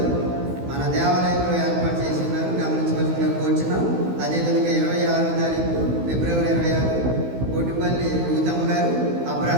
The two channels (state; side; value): late; left; 16 ms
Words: మన దేవాలయంలో ఏర్పాటు చేసి ఉన్నారు, గమనించవలసిందిగా కోరుచున్నాం. అదేవిధంగా 26వ తారీఖు ఫిబ్రవరి 26 కోటిపల్లి రూతమ్మ గారు,